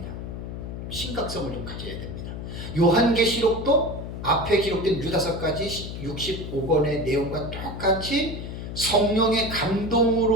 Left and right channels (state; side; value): noise; left; hum, 7 dB below the sound